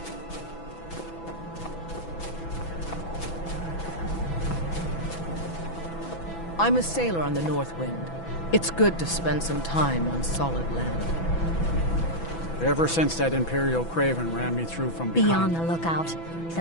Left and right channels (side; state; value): right; late; 6.0 ms